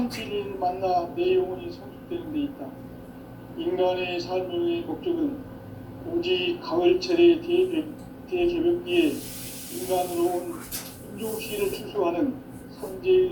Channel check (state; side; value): identical; both; correlation 1.00